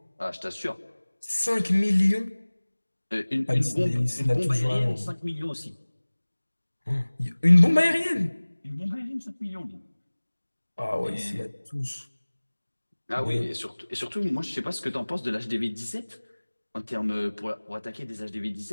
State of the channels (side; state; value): both; inverted; correlation -1.00